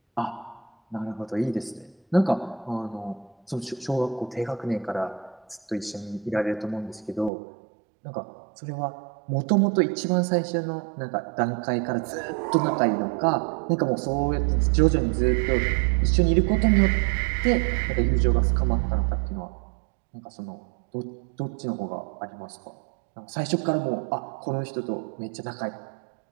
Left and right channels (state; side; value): drops out; left; at 7.3 s